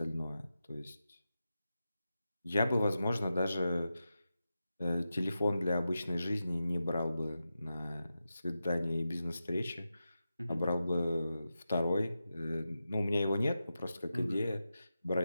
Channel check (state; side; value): inverted; both; correlation -0.91